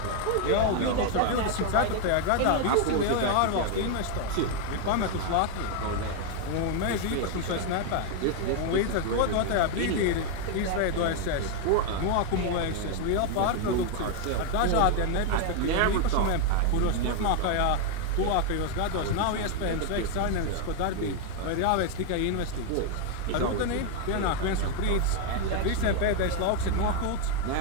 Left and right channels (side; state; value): both; different; correlation 0.00